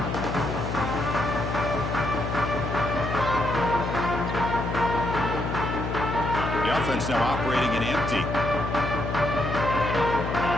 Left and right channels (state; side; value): noise; left; hum, 3 dB below the sound